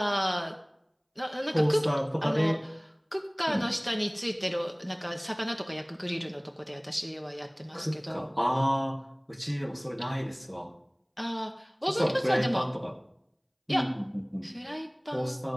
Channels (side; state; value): both; identical; correlation 1.00